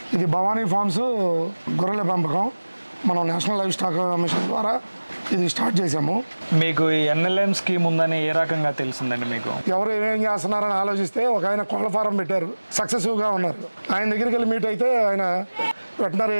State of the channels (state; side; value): inverted; both; correlation -1.00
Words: ఇది భవానీ ఫార్మ్స్ గొర్రెల పెంపకం మనం నేషనల్ లైవ్ స్టాక్ మిషన్ ద్వారా ఇది స్టార్ట్ చేసాము. మీకు ఈ ఎన్ఎల్ఎం స్కీమ్ ఉందని ఏ రకంగా తెలిసిందండి? మీకు ఎవరు ఏం చేస్తున్నారని ఆలోచిస్తే ఒక ఆయన కోళ్ళ ఫారం పెట్టారు, సక్సెసివ్గా ఉన్నారు. ఆయన దగ్గరికి వెళ్ళి మీట్ అయితే ఆయన వెటనరీ